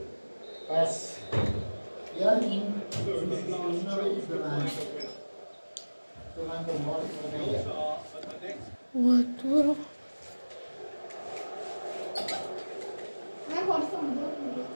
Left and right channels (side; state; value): both; inverted; correlation -1.00